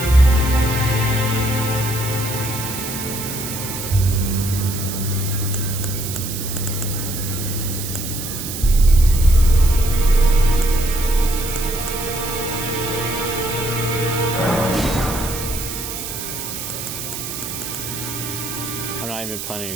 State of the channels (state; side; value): noise; right; hiss, 7 dB below the sound